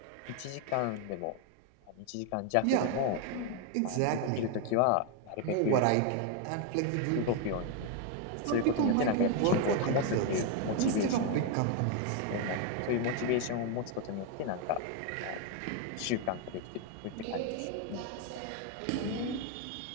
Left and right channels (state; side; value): different; both; correlation 0.01